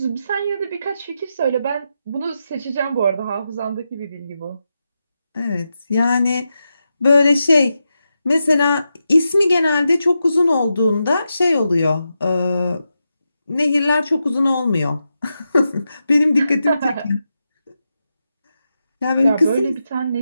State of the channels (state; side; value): inverted; both; correlation -0.88